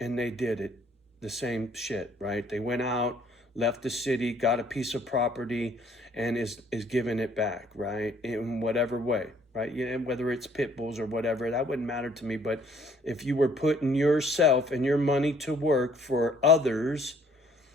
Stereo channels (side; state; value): both; normal; correlation 0.61